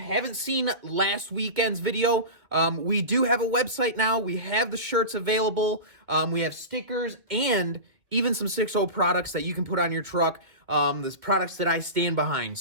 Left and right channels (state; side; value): late; left; 2.2 ms